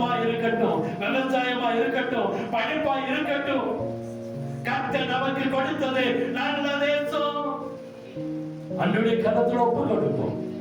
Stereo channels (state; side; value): identical; both; correlation 1.00